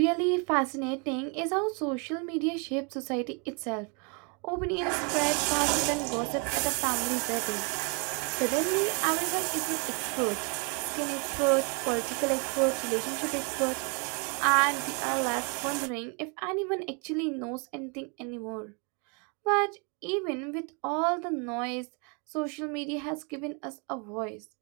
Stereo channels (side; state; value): left; quieter; 34.9 dB